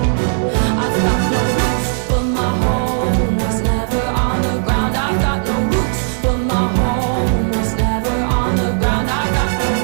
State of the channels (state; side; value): silent; left; digital silence